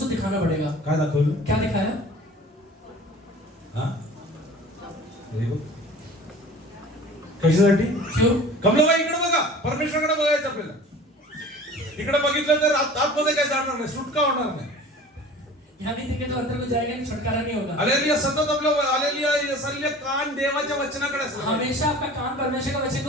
तो दिखाना पड़ेगा. काय दाखवलं? क्या दिखाया? हा? Very good. कशासाठी? क्यों? कमलाबाई इकडे बघा. परमेश्वराकडे बघायचं आपल्याला. इकडे बघितलं तर आतमध्ये काय जाणार नाही, सुटका होणार नाही. यहाँ नहीं देखे तो अंदर को जाएगा नहीं, छुटकारा नहीं होगा. हालेलुया सतत आपलं हालेलुया यसालिया कान देवाच्या वचनाकडे असलं पाहिजे. हमेशा आपका कान परमेश्वर का वचन के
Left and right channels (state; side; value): normal; both; correlation 0.43